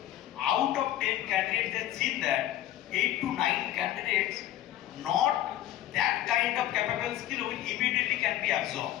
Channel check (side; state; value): right; quieter; 12.9 dB